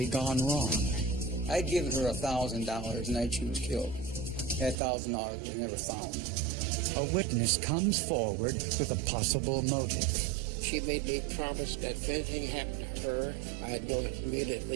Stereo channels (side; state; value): left; drops out; at 4.8 s